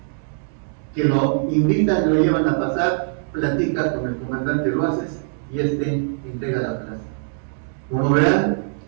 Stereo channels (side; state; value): left; silent; digital silence